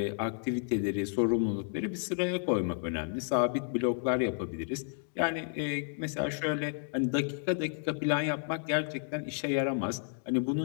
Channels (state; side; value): silent; right; 56 dB below the other